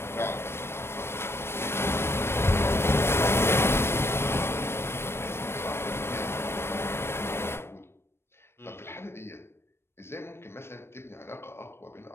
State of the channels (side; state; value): right; late; 0.12 ms